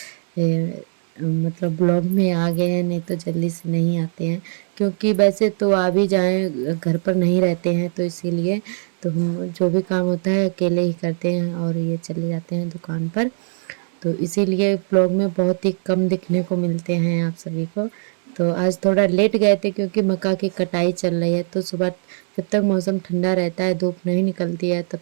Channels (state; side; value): silent; left; digital silence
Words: मतलब ब्लॉग में आ गए हैं, नहीं तो जल्दी से नहीं आते हैं क्योंकि वैसे तो आ भी जाएं घर पर नहीं रहते हैं, तो इसीलिए तो हम जो भी काम होता है अकेले ही करते हैं और ये चले जाते हैं दुकान पर। तो इसीलिए ब्लॉग में बहुत ही कम दिखने को मिलते हैं आप सभी को। तो आज थोड़ा लेट गए थे क्योंकि मक्का की कटाई चल रही है, तो सुबह जब तक मौसम ठंडा रहता है, धूप नहीं निकलती है, तब